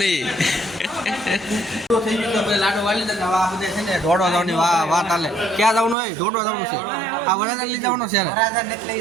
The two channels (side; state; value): left; drops out; at 6.0 s